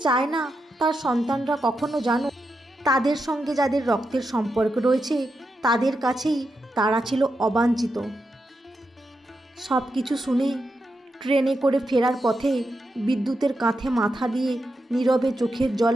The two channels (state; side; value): normal; both; correlation 0.86